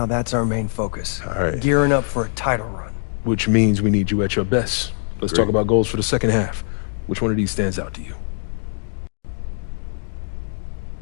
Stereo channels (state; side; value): silent; right; digital silence